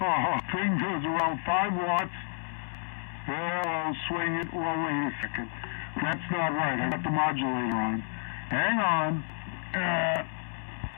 thing goes around 5 watts. Well, I'll swing it. Well, wait a second. That's not right. I got the modulator on. Hang on.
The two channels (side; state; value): right; silent; digital silence